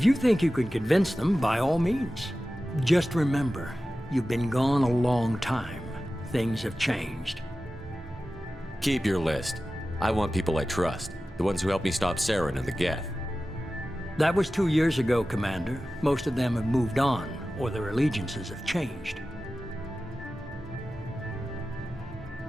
you think you can convince them, by all means. Just remember, you've been gone a long time. Things have changed. Keep your list. I want people I trust. The ones who helped me stop Saren and the Geth. That was 2 years ago, Commander. Most of them have moved on, or their allegiances have changed.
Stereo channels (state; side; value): normal; both; correlation 0.95